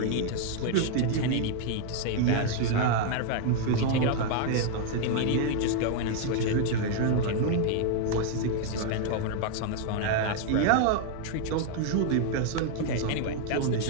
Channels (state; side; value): different; both; correlation 0.00